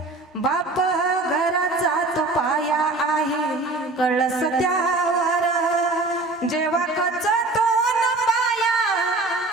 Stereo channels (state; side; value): quieter; left; 3.2 dB